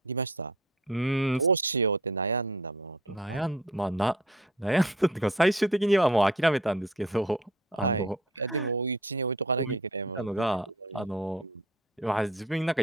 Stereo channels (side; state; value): both; normal; correlation 0.50